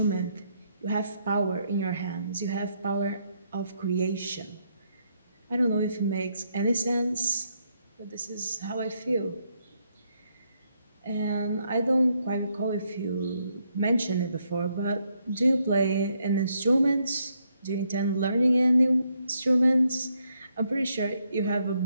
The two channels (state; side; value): inverted; both; correlation -0.76